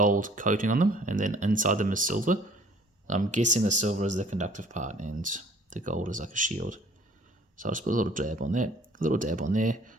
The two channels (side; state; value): both; normal; correlation 0.54